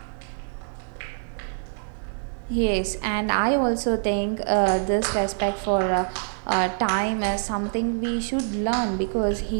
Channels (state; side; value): silent; left; digital silence